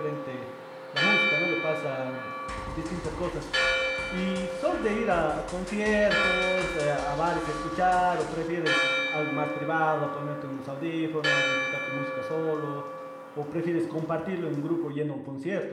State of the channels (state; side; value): identical; both; correlation 1.00